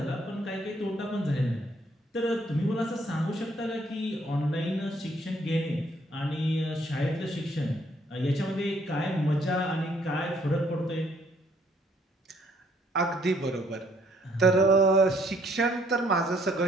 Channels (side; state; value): both; normal; correlation 0.66